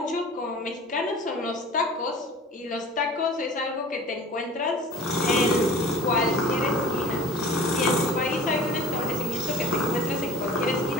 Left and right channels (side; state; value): both; normal; correlation 0.41